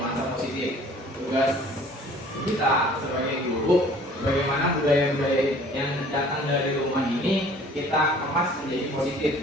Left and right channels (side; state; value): both; normal; correlation 0.51